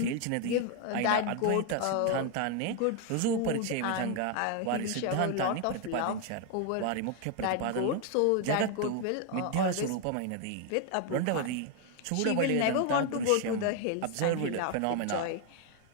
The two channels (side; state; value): both; different; correlation 0.01